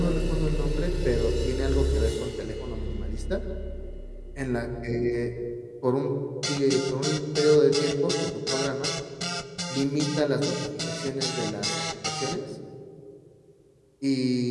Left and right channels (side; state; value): both; identical; correlation 1.00